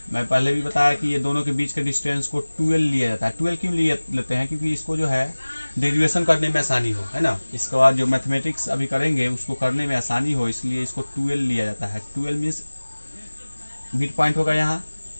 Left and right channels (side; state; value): both; inverted; correlation -1.00